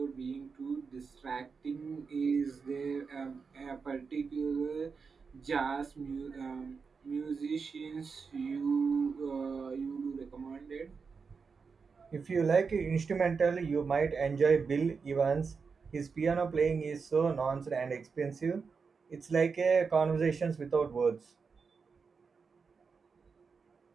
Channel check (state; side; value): quieter; left; 5.2 dB